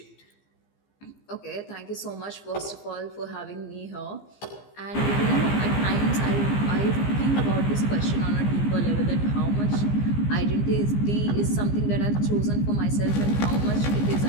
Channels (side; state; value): right; late; 15 ms